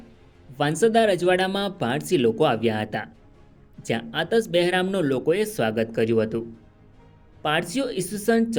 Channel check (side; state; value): both; identical; correlation 1.00